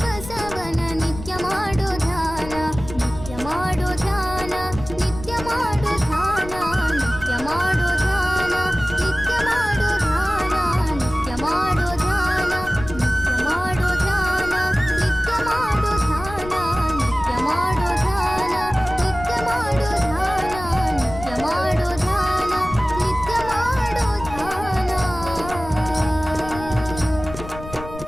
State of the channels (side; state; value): left; noise; rumble, 12 dB below the sound